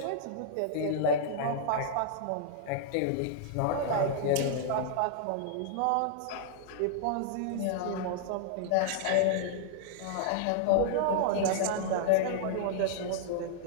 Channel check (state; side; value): different; both; correlation -0.01